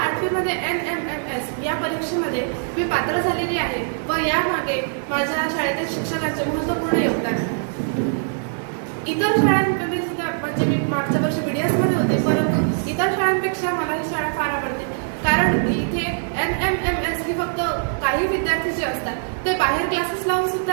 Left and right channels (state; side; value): silent; left; digital silence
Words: 8वीमध्ये NMMS या परीक्षेमध्ये मी पात्र झालेली आहे व यामागे माझ्या शाळेतील शिक्षकांचे महत्त्वपूर्ण योगदान आहे। इतर शाळांमध्ये सुद्धा म्हणजे मी मागच्या वर्षी BDS मध्ये होते, परंतु इतर शाळांपेक्षा मला ही शाळा फार आवडते, कारण इथे NMMS ही फक्त काही विद्यार्थी जे असतात ते बाहेर क्लासेस लावून